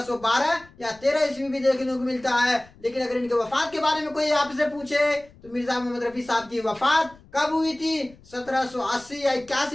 یا 13 عیسوی بھی دیکھنے کو ملتا ہے. لیکن اگر ان کے وفات کے بارے میں کوئی آپ سے پوچھے تو مرزا محمد رفیع صاحب کی وفات کب ہوئی تھی 1780 یا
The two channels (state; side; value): noise; left; rumble, 25 dB below the sound